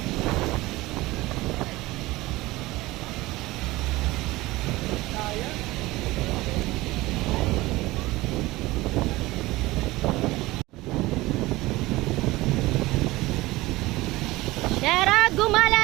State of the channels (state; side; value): quieter; left; 19.6 dB